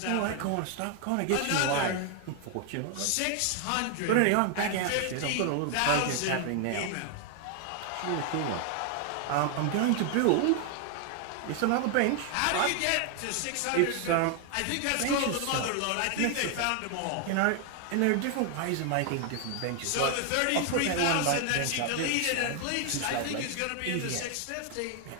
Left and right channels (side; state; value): both; different; correlation 0.00